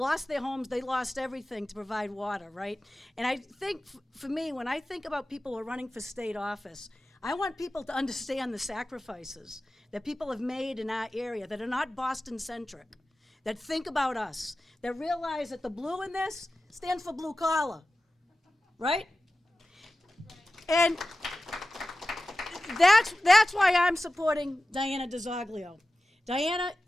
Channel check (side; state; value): both; normal; correlation 0.95